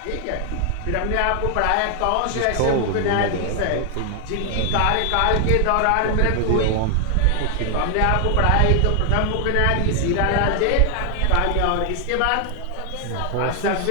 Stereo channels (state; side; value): different; both; correlation 0.00